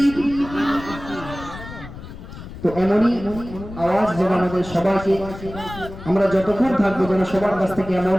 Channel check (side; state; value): left; noise; rumble, 13 dB below the sound